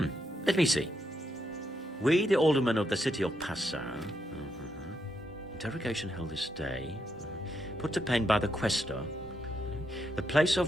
Let me see. We, the aldermen of the city of Passau, interrogation held this day, put to pen by the questor. The place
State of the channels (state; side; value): normal; both; correlation 0.80